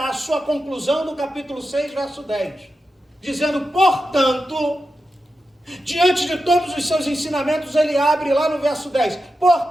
sua conclusão no capítulo 6, verso 10, dizendo: portanto, diante de todos os seus ensinamentos, ele abre lá no verso 10,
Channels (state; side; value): normal; both; correlation 0.90